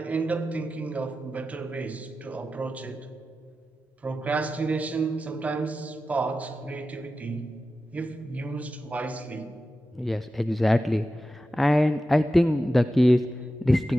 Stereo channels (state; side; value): normal; both; correlation 0.92